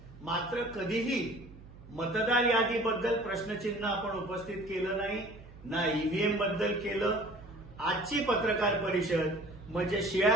मात्र कधीही मतदार यादीबद्दल प्रश्नचिन्ह आपण उपस्थित केलं नाही, ना ईव्हीएम बद्दल केलं. आजची पत्रकार परिषद म्हणजे शिळ्या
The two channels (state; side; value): noise; right; hum, 19 dB below the sound